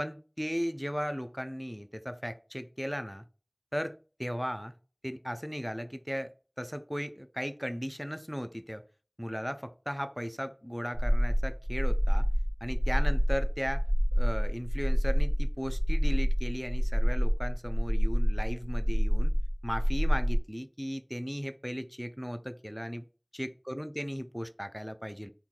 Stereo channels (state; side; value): identical; both; correlation 1.00